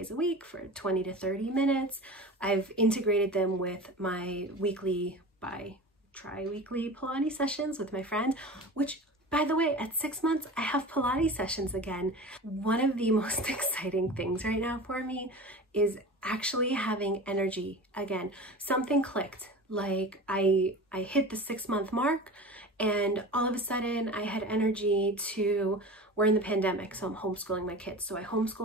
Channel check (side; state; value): both; normal; correlation 0.33